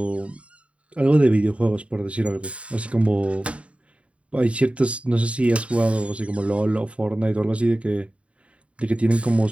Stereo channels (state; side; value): late; left; 0.063 ms